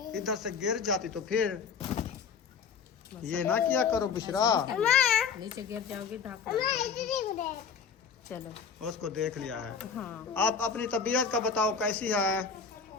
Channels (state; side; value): quieter; right; 6.2 dB